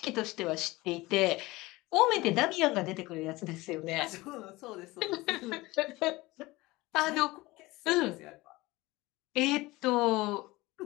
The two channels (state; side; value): quieter; right; 20.6 dB